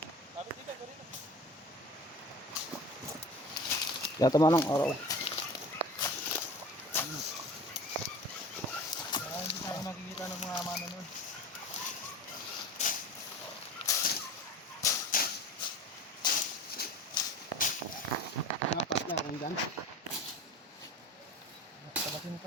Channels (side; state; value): both; normal; correlation 0.38